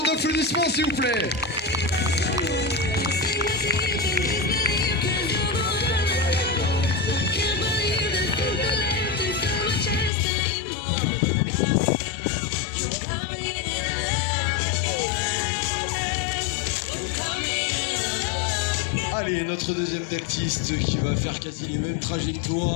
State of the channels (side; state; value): right; drops out; at 10.1 s